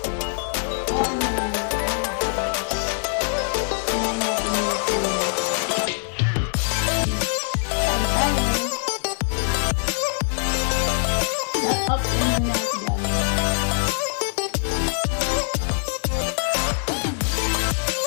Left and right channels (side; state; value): right; silent; digital silence